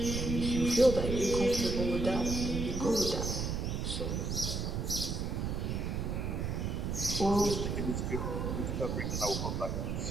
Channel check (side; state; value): right; noise; rumble, 1 dB below the sound